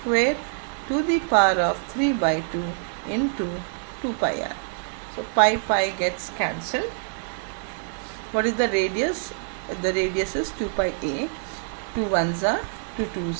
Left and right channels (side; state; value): left; silent; 61 dB below the other